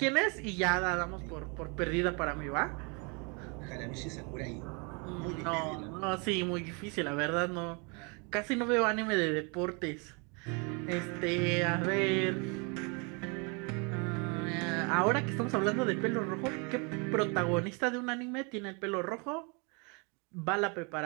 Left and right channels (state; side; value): quieter; left; 32.9 dB